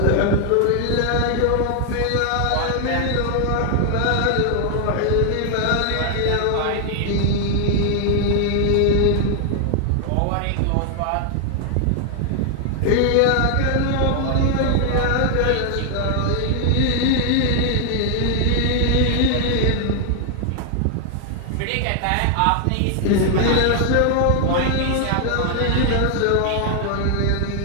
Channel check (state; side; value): different; both; correlation 0.00